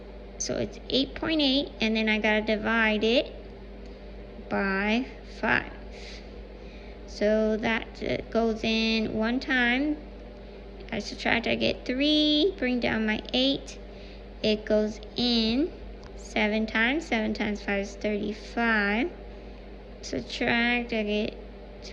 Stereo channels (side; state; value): both; identical; correlation 1.00